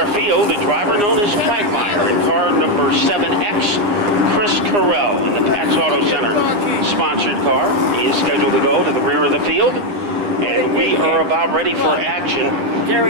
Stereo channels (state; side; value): late; left; 9.7 ms